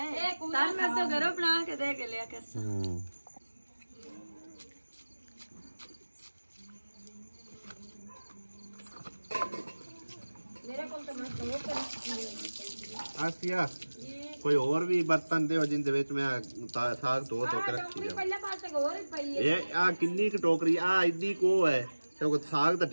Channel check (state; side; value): inverted; both; correlation -1.00